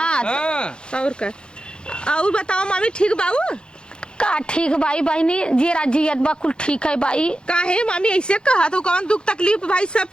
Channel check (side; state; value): right; late; 0.050 ms